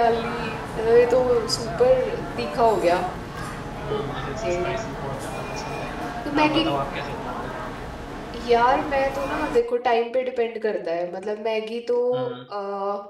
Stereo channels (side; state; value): both; identical; correlation 1.00